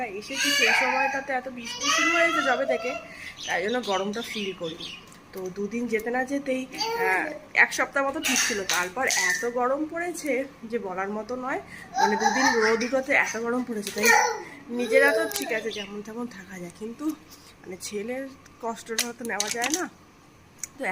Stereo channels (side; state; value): both; identical; correlation 1.00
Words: এসেছি সেই সময়টাতে এত বৃষ্টি শুরু হয়েছে যবে থেকে, তাই জন্য গরমটা ফিল করিনি। তো দুদিন যেতে না যেতেই এক সপ্তাহ মতো ঠিক ছিল, তারপর এত গরম পড়েছে যে বলার মতো নয়। মানে দুদিন রোদ উঠোতে এত গরম পড়েছে, তাই নিজেরা তো ঠিক আছে যেমন তেমন থাকা যায়, কিন্তু মানে ছেলের কষ্টটা তো নেওয়া যায় না। তো